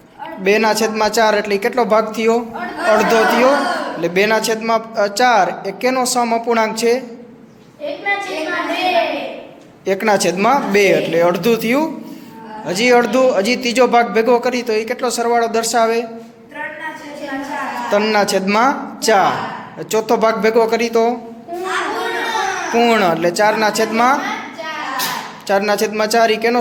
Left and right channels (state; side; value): identical; both; correlation 1.00